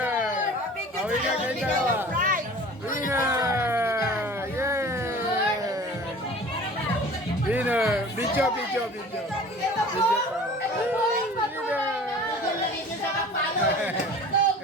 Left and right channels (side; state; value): both; normal; correlation 0.43